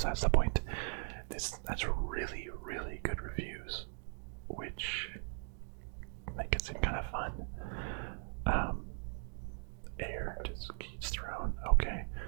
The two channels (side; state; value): left; silent; 52 dB below the other